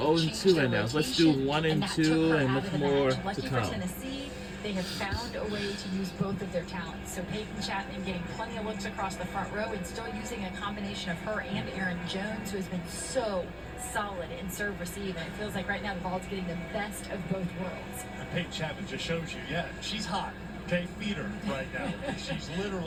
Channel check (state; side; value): identical; both; correlation 1.00